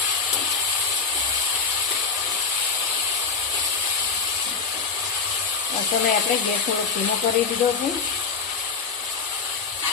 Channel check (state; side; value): quieter; right; 4.9 dB